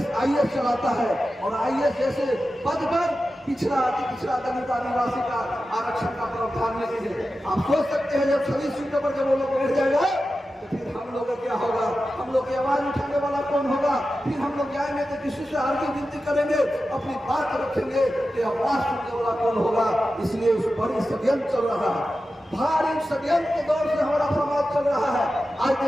आईएएस चलाता है, और आईएएस जैसे पद पर पिछड़ा अति पिछड़ा दलित आदिवासी का आरक्षण का प्रावधान नहीं है। आप सोच सकते हैं जब सभी सीटों पर जब वो लोग बैठ जाएगा तो फिर हम लोग का क्या होगा? हम लोग की आवाज उठाने वाला कौन होगा? फिर हम लोग जाएंगे तो किसी से आगे विनती करेंगे, अपनी बात रखेंगे कि आवाज सुनने वाला कौन होगा? इसलिए उस बड़ी षड्यंत्र चल रहा है, भारी षड्यंत्र के दौर से हमारा समाज चल रहा है। आज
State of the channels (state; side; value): normal; both; correlation 0.92